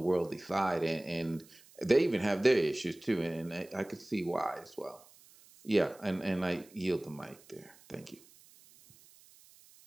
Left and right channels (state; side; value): noise; right; hiss, 25 dB below the sound